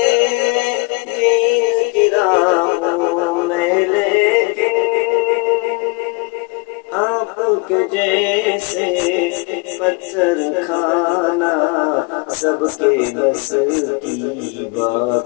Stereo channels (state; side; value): quieter; right; 28.8 dB